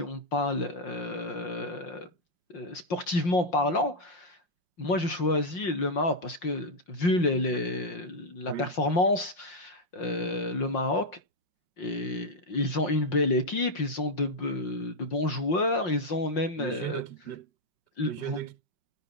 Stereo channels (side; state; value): right; late; 5.6 ms